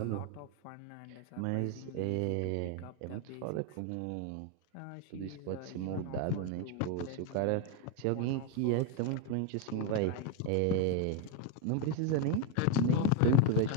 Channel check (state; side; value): different; both; correlation 0.01